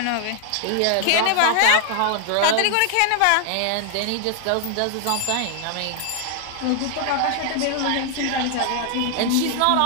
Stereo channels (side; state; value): both; different; correlation 0.00